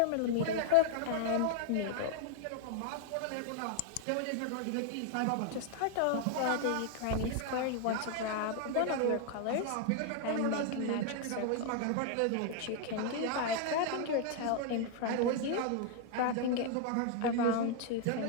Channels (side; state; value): both; different; correlation 0.00